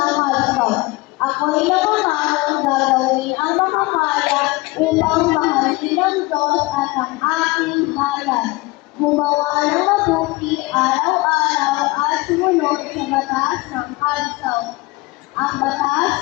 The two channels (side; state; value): right; quieter; 22.5 dB